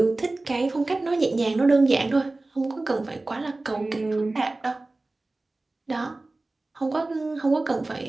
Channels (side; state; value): left; quieter; 3.1 dB